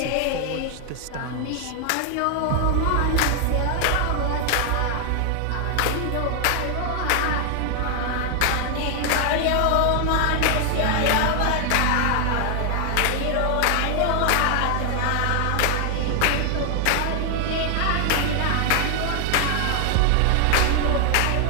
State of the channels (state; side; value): different; both; correlation 0.00